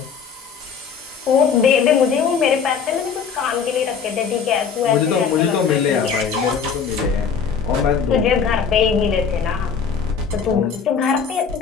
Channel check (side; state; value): right; quieter; 6.5 dB